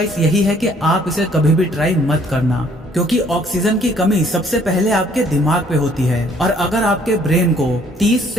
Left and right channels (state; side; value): normal; both; correlation 0.61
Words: यही है कि आप इसे कभी भी ट्राई मत करना, क्योंकि ऑक्सीजन की कमी सबसे पहले आपके दिमाग पे होती है और अगर आपके ब्रेन को 30